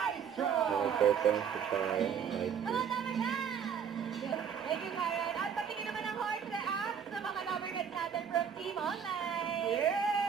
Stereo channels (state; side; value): quieter; left; 7.5 dB